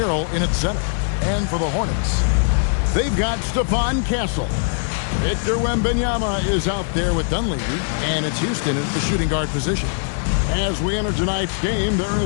in at center. And for the Hornets, they've got Stephon Castle. Victor Wembanyama is out there with Dunleavy, and it's Houston at the shooting guard position. As we enter tonight's game, there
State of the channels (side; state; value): right; silent; 58 dB below the other